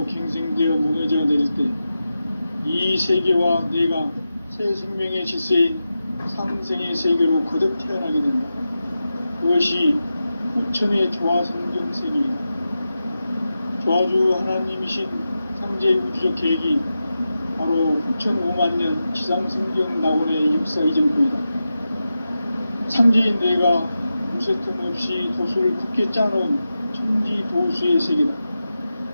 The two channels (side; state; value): both; inverted; correlation -0.91